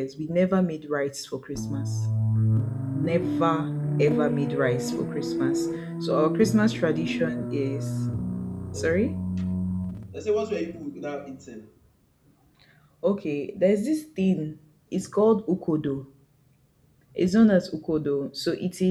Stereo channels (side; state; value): both; identical; correlation 1.00